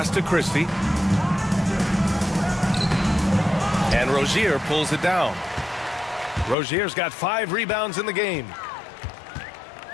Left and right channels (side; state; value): right; drops out; at 6.6 s